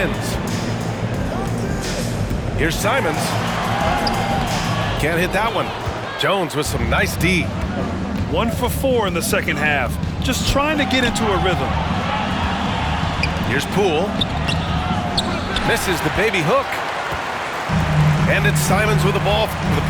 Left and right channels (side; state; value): both; identical; correlation 1.00